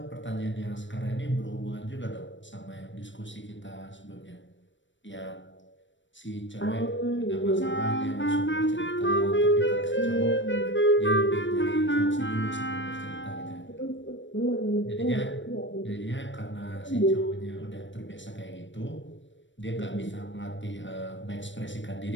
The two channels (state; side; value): late; right; 0.54 ms